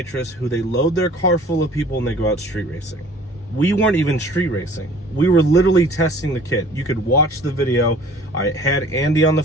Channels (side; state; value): both; normal; correlation 0.50